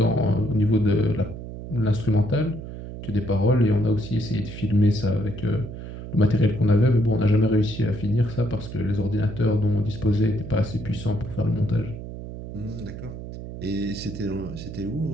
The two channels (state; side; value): noise; right; hum, 10 dB below the sound